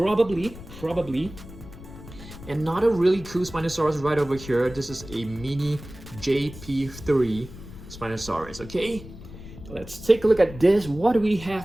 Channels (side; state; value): left; noise; rumble, 15 dB below the sound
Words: another really cool Spinosaurus right over here. This is a mini JP3 Spinosaurus. Okay, let's take a look at this. What do we